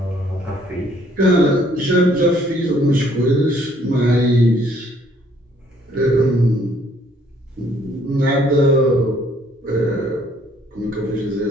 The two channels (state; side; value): normal; both; correlation 0.63